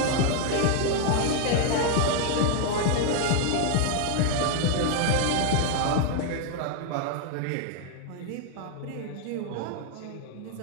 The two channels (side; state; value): both; different; correlation 0.00